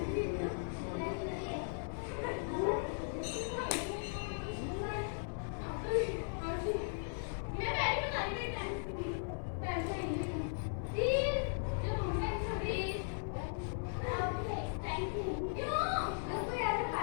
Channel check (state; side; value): silent; right; digital silence